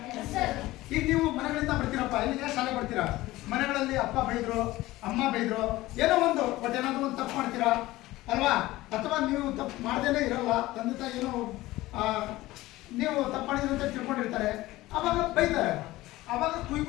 ಈಗ ನೀವು ಮನೆಗಳಿಂದ ಬರ್ತೀರಪ್ಪ, ಇಲ್ಲಿಗೆ ಶಾಲೆ ಬರ್ತೀರಾ, ಮನೆಗಳಲ್ಲಿ ಅಪ್ಪ ಬೈದ್ರು, ಅಮ್ಮ ಬೈದ್ರು, ಏನೋ ಒಂದು ಬಟ್ ಏನಾದ್ರು ಒಂದು ತಪ್ಪು ಮಾಡ್ತೀರಾ ಅಲ್ವಾ? ಅಥವಾ ನೀವು ತಪ್ಪು ಮಾಡ್ದೇನೆ ಇರಲ್ಲ, ತಂದೆ ತಾಯಿ ಏನೋ ನೀವು ತಪ್ಪು ಮಾಡಿದ್ರು ಅಂತ ತಿಳ್ಕೊಂಡಿರ್ತಾರೆ, ಅವಾಗ ಬೈತಾರೆ, ಅವಾಗ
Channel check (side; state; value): right; quieter; 17.8 dB